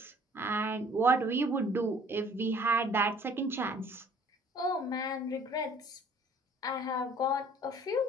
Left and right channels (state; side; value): normal; both; correlation 0.55